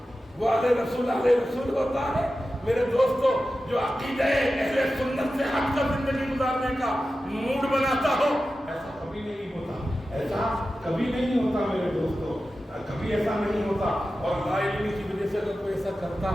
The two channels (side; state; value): both; normal; correlation 0.93